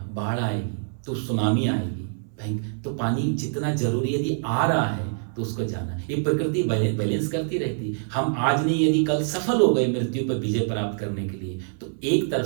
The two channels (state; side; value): silent; left; 62 dB below the other